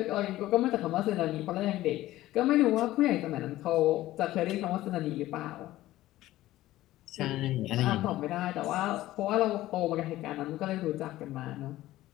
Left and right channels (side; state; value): right; quieter; 15.7 dB